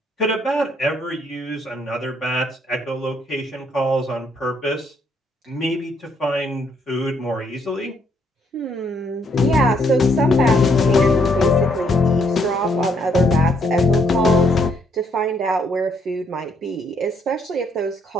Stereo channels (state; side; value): normal; both; correlation 0.71